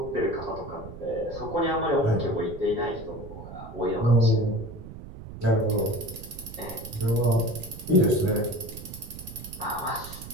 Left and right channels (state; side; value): noise; right; rumble, 13 dB below the sound